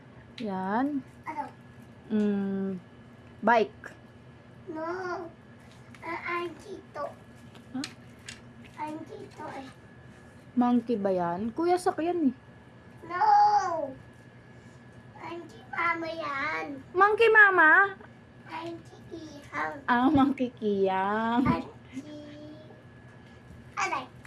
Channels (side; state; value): both; identical; correlation 1.00